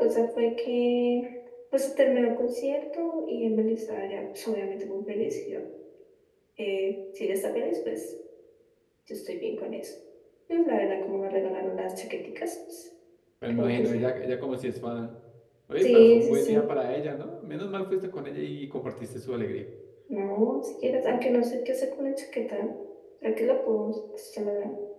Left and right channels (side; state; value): both; identical; correlation 1.00